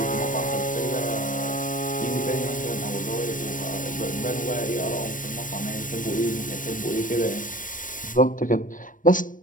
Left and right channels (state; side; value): late; right; 0.38 ms